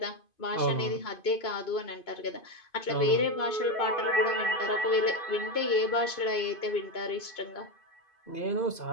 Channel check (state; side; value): late; right; 2.5 ms